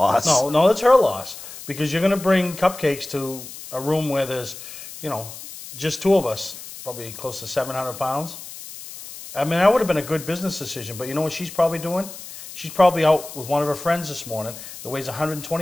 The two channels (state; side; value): noise; left; hiss, 13 dB below the sound